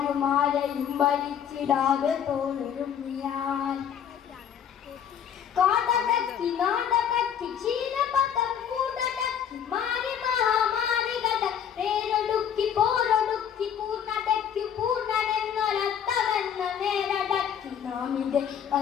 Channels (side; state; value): right; quieter; 8.6 dB